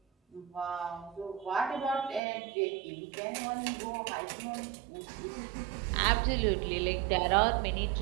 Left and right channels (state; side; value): drops out; left; at 2.2 s